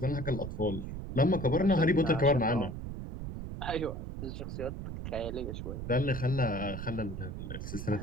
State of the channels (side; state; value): right; noise; rumble, 7 dB below the sound